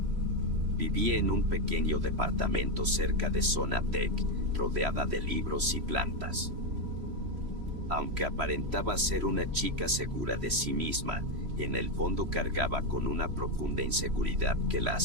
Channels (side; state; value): left; late; 3.1 ms